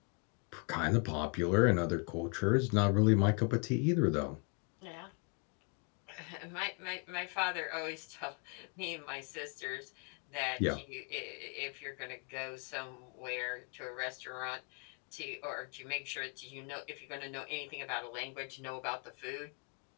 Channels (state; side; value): quieter; right; 36.1 dB